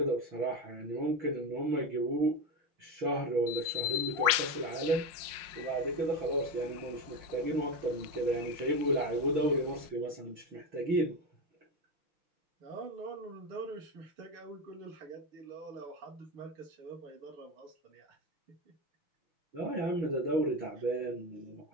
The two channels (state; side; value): late; left; 5.6 ms